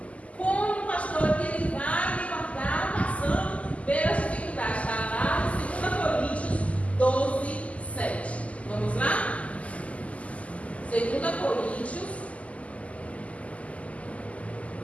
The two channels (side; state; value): right; late; 0.068 ms